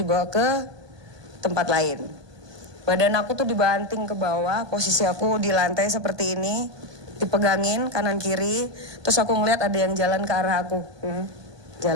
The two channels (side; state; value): left; late; 1.2 ms